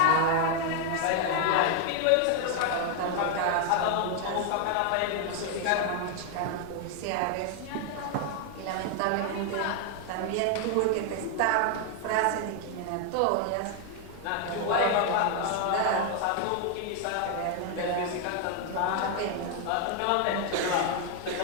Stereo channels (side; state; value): both; different; correlation 0.00